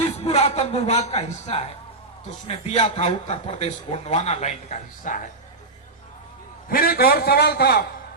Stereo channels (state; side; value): quieter; left; 3.1 dB